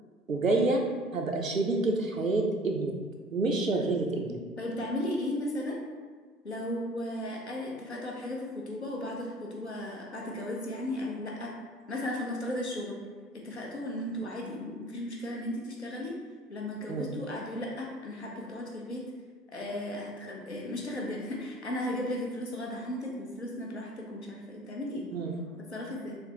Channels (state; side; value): normal; both; correlation 0.49